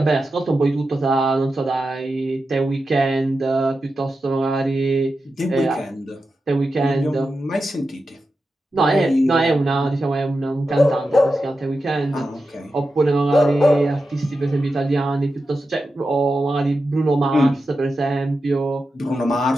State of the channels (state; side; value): normal; both; correlation 0.90